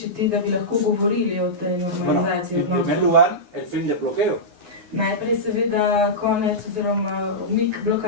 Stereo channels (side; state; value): left; late; 9.8 ms